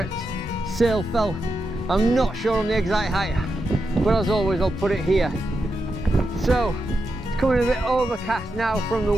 Sailfell. I'm not sure on the exact height, but as always I'll put it here. So it's coming a bit overcast now from the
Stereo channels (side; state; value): both; normal; correlation 0.87